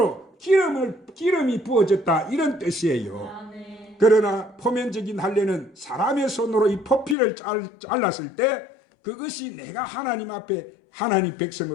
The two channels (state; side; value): drops out; right; at 7.2 s